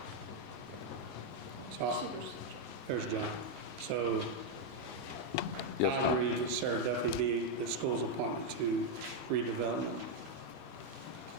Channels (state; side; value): normal; both; correlation 0.01